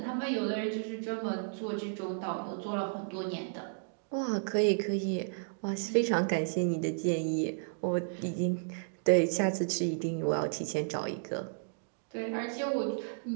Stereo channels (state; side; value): silent; left; digital silence